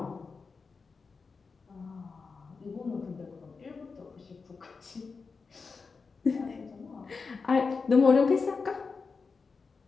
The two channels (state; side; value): quieter; right; 4.8 dB